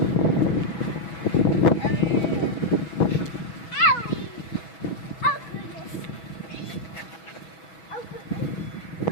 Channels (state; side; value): late; right; 6.1 ms